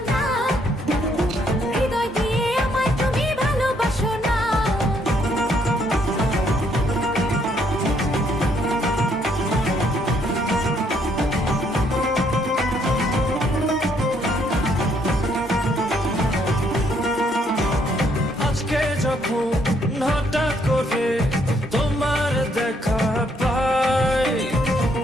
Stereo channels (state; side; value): normal; both; correlation 0.70